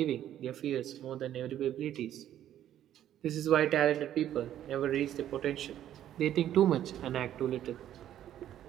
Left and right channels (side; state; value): left; quieter; 11.5 dB